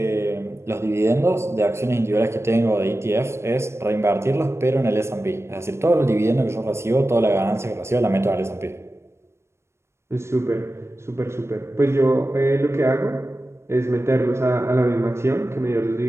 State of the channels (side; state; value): left; late; 0.13 ms